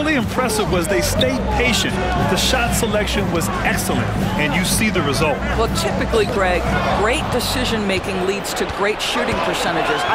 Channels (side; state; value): both; identical; correlation 1.00